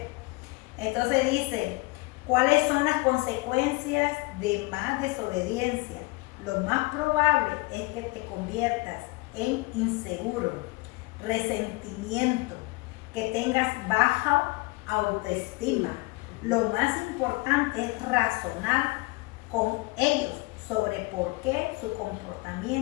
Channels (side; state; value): right; quieter; 25.0 dB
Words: Entonces dice, ¿cuáles son las consecuencias de más desobediencia? Lo más probable es que te conviertas en inseguro, resentimiento, que tengas baja autoestima. Lo más importante es razonar con ellos sobre por qué su